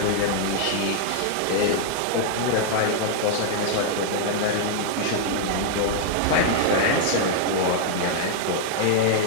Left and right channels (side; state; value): both; different; correlation -0.01